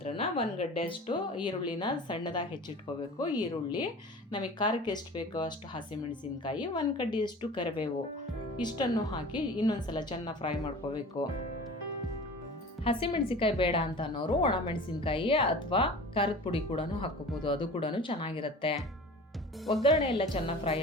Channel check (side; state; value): both; normal; correlation 0.39